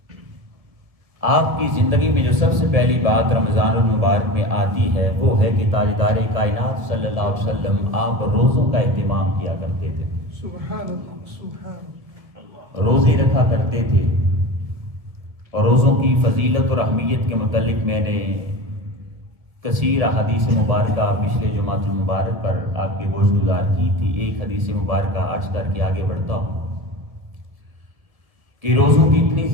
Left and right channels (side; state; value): left; late; 1.5 ms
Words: آپ کی زندگی میں جو سب سے پہلی بات رمضان المبارک میں آتی ہے وہ ہے کہ تاجدار کائنات صلی اللہ علیہ وسلم آپ روزوں کا اہتمام کیا کرتے تھے، سبحان اللہ سبحان اللہ، روزے رکھا کرتے تھے۔ اور روزوں کی فضیلت اور اہمیت کے متعلق میں نے کثیر حدیث مبارکہ پچھلے جمعۃ المبارک پر آپ کے گوش گزار کی تھی۔ ایک حدیث مبارکہ عرض کر کے آگے بڑھتا ہوں کہ روزوں کی اتنی